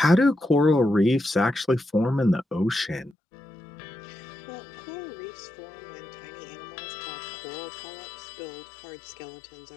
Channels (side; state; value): right; drops out; at 3.2 s